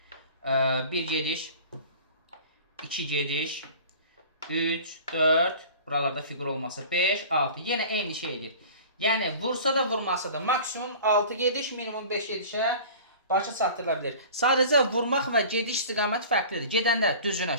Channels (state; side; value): inverted; both; correlation -0.41